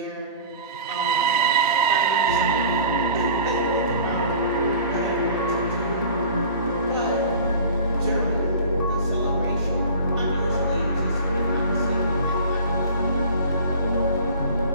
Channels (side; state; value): both; inverted; correlation -0.42